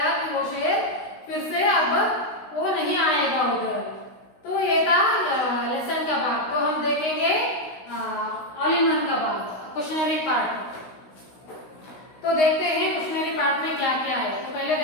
कि वो शेर फिर से अब वो नहीं आएगा उधर। तो ये था लेसन का भाग। तो हम देखेंगे ऑल इन वन का भाग, क्वेश्चनरी पार्ट। तो देखते हैं क्वेश्चनरी पार्ट में क्या क्या है। तो पहले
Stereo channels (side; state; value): right; late; 16 ms